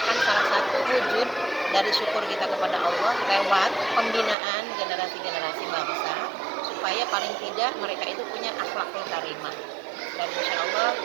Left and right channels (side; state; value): left; drops out; at 4.4 s